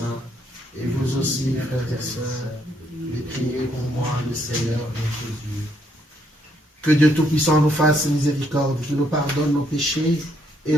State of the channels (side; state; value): both; normal; correlation 0.72